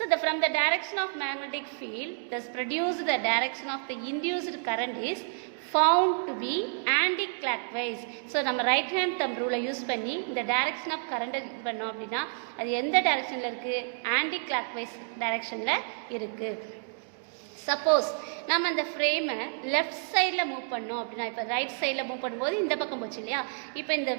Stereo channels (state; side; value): silent; left; digital silence